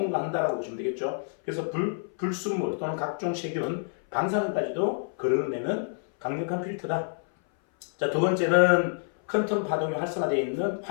보시면 되겠죠. 그래서 불순물 또는 각종 세균, 방사능까지도 걸러내는 강력한 필터다. 자, 두 번째는 퀀텀 파동이 활성화되어 있는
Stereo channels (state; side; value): silent; right; 58 dB below the other